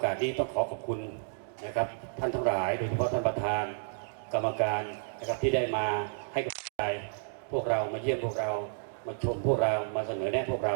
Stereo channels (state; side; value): silent; left; digital silence